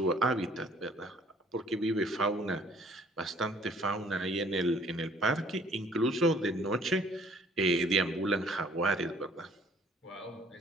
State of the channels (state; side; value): normal; both; correlation 0.58